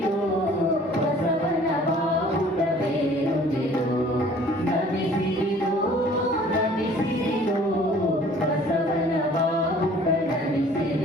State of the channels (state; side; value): normal; both; correlation 0.52